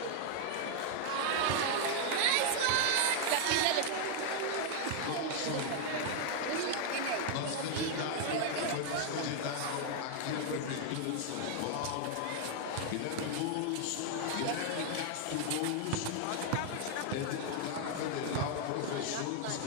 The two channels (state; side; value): different; both; correlation 0.00